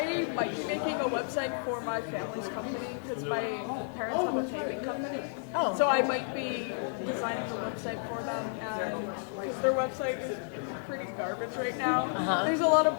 might be making a website for my family's company because my parents have a paving company. Oh. So I might be designing a website for them, and because their website is pretty garbage right now. Uh-huh. There's a lot of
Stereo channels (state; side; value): silent; right; 57 dB below the other